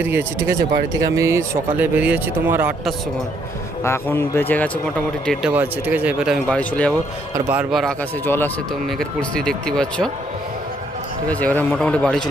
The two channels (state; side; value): normal; both; correlation 0.70